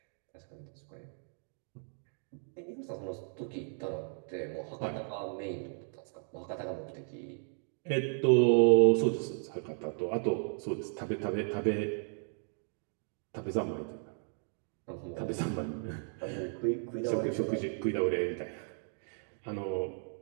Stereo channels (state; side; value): silent; left; 55 dB below the other